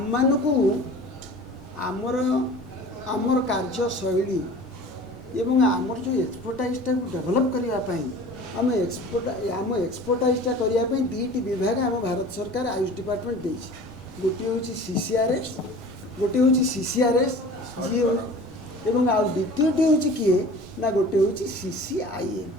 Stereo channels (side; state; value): both; normal; correlation 0.42